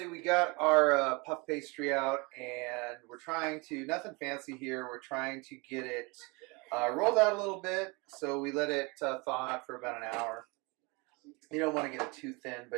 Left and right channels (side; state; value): left; quieter; 27.9 dB